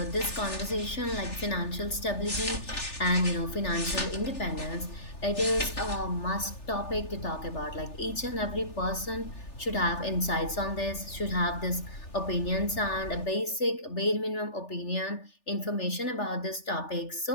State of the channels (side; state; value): right; late; 3.4 ms